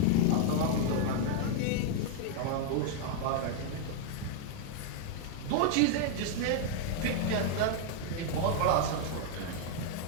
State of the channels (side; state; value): both; different; correlation 0.00